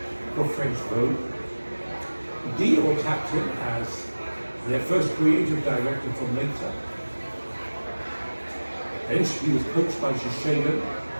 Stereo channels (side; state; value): both; inverted; correlation -1.00